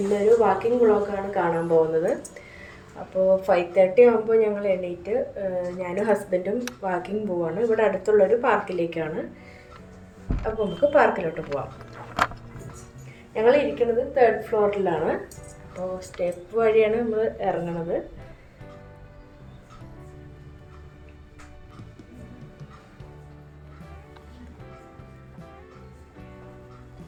walking വ്ളോഗാണ് കാണാൻ പോകുന്നത്. അപ്പോൾ 5:30 ആകുമ്പോൾ ഞങ്ങൾ എണീറ്റ് ഞാനും ഹസ്ബൻഡും വാക്കിംഗ് പോവാണ്. ഇവിടെ അടുത്തുള്ളൊരു പാർക്കിലേക്കാണ്. അപ്പോൾ നമുക്ക് പാർക്കിലോട്ട് പോവാം. ഞങ്ങൾ ഇരിക്കുന്നത് 3rd ഫ്ലോറിലാണ്. അപ്പോൾ സ്റ്റെപ്പ് വഴിയാണ് നമ്മൾ ഇറങ്ങണത്.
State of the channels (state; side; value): identical; both; correlation 1.00